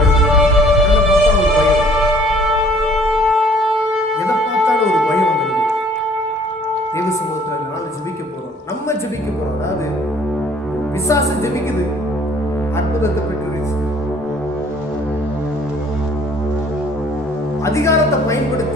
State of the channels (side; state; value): both; normal; correlation 0.56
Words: எதை பார்த்தாலும் ஒரு பயம் வந்துடுது. தேவ சமூகத்தில் நாள் ஜெபிக்க போறோம். நம்ம ஜெபிக்க போறோம். அதாவது பிசாசு ஜெபிக்குது, அற்புதத்தை பெற்று அதிகாரத்தை